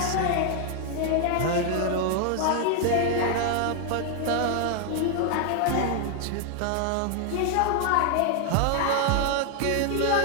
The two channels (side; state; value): both; different; correlation 0.00